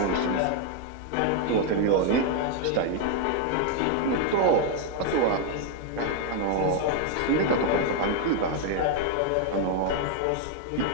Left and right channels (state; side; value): different; both; correlation 0.01